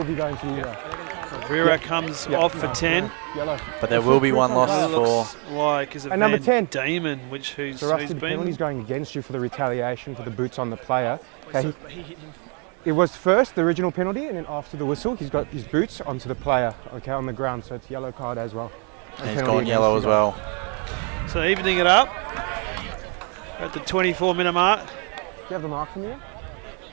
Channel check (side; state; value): left; quieter; 36.4 dB